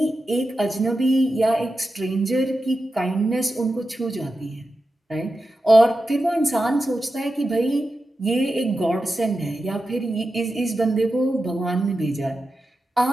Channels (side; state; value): both; normal; correlation 0.91